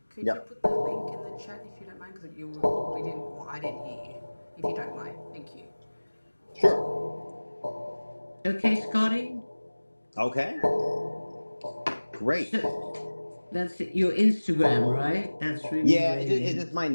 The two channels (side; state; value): both; inverted; correlation -1.00